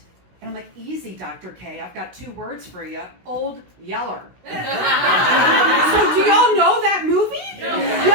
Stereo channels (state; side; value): late; left; 16 ms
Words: And I'm like, easy, Dr. K. I've got 2 words for you. Old Yeller. So do y'all know that movie?